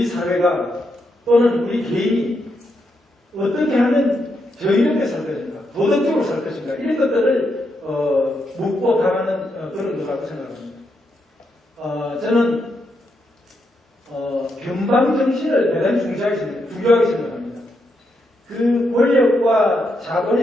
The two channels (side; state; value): both; normal; correlation 0.81